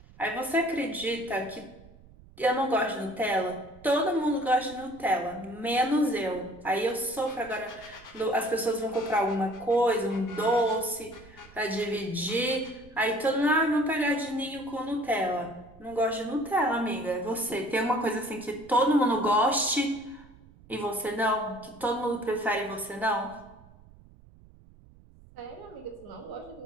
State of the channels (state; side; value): noise; right; rumble, 24 dB below the sound